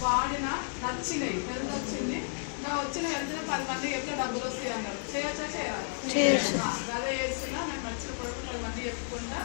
వాడిన నచ్చినాయి, హెల్త్ వచ్చింది. ఇంకా వచ్చిన హెల్త్ 10 మందికి ఎట్లా డబ్బులు వస్తాయి అన్నారు. చేయొచ్చా చేయాలి? అదే చేస్తున్నా. నేను నచ్చిన ప్రొడక్ట్ 10 మంది చెప్పుకుంటా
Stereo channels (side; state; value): right; silent; 56 dB below the other